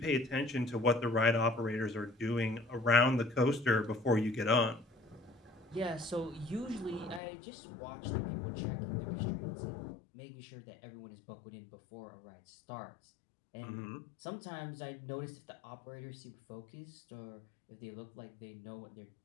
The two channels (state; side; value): drops out; right; at 7.2 s